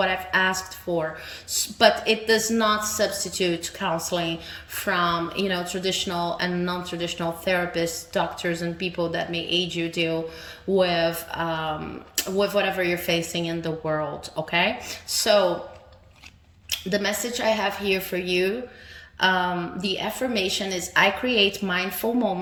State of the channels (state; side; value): identical; both; correlation 1.00